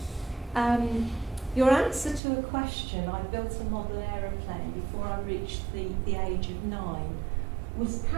your answer to a question, I built a model aeroplane before I reached the age of 9, was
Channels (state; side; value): drops out; left; at 2.2 s